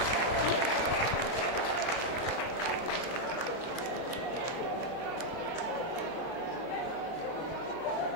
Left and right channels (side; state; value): right; late; 35 ms